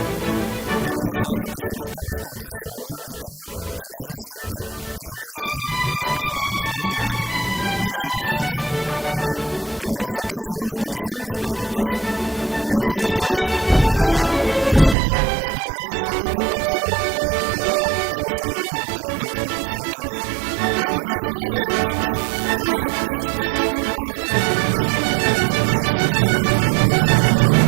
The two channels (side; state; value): left; drops out; at 15.0 s